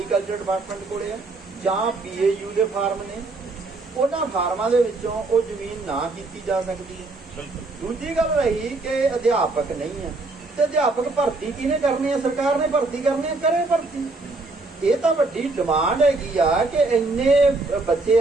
ਡਿਪਾਰਟਮੈਂਟ ਕੋਲੇ ਆ, ਜਾਂ PAU ਦੇ ਫਾਰਮ ਨੇ। ਉਹਨਾਂ ਫਾਰਮਾਂ ਦੇ ਵਿੱਚੋਂ ਉਹ ਜ਼ਮੀਨ ਨਾ ਕੀਤੀ ਜਾ ਸਕਦੀ ਹੈ। ਦੂਜੀ ਗੱਲ ਰਹੀ ਕਿ ਅਧਿਆਪਕ ਨਹੀਂ ਆ, ਤੇ ਅਧਿਆਪਕ ਭਰਤੀ ਕਿਹਨੇ ਕਰਨੀ ਹੈ? ਸਰਕਾਰ ਨੇ ਭਰਤੀ ਕਰਨੀ ਹੈ, ਕਰੇ ਭਰਤੀ। ਇਹ ਤਾਂ ਵੱਡੀ ਡਿਮਾਂਡ ਹੈਗੀ ਆ ਕਿ ਇੰਨੇ ਬੱਚੇ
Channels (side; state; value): left; quieter; 3.3 dB